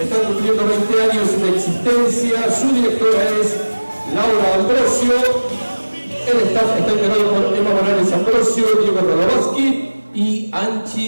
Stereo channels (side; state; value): both; inverted; correlation -1.00